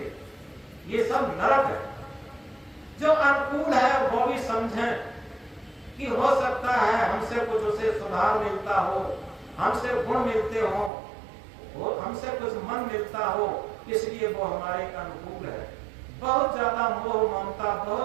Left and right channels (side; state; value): left; drops out; at 10.9 s